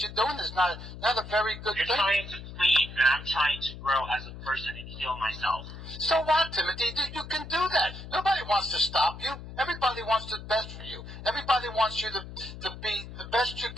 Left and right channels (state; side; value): noise; left; hum, 12 dB below the sound